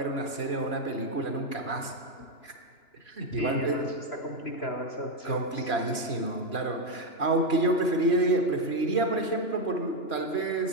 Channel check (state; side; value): late; right; 2.9 ms